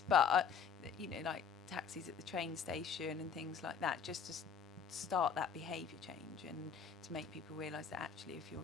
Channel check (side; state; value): right; quieter; 6.6 dB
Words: but you know, like taxis at the train station and things like that, just to start that behaviour change and to make people realise that actually if you're